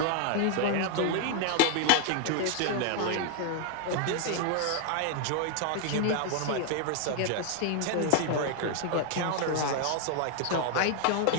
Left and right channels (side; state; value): both; different; correlation 0.00